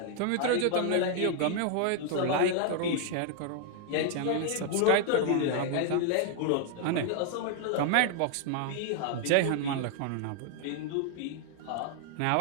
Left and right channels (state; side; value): different; both; correlation 0.00